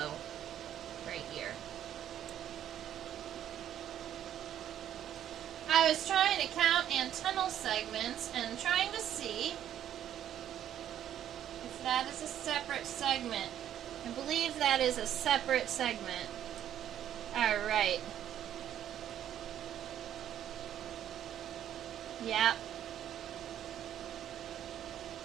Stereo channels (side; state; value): left; quieter; 10.7 dB